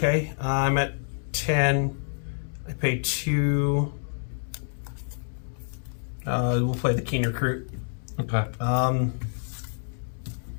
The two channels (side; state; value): right; silent; digital silence